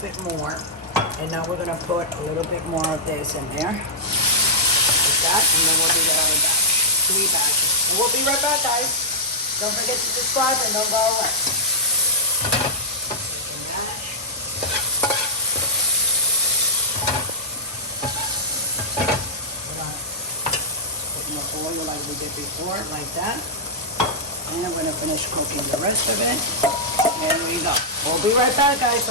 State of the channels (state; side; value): normal; both; correlation -0.11